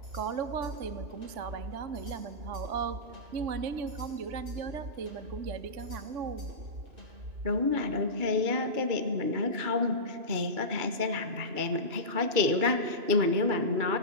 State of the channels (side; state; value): left; late; 2.9 ms